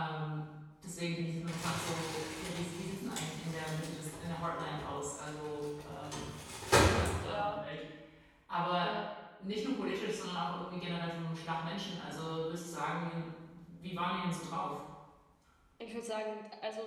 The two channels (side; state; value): both; identical; correlation 1.00